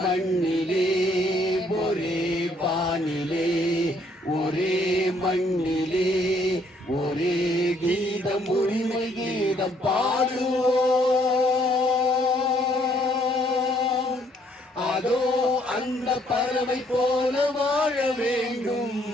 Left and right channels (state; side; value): normal; both; correlation 0.66